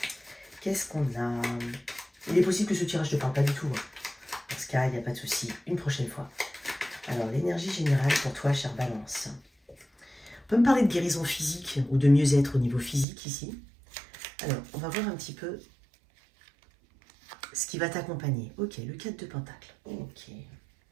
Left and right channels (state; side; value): drops out; left; at 13.1 s